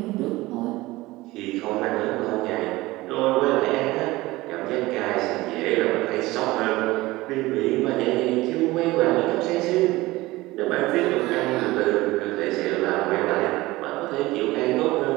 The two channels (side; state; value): left; quieter; 19.4 dB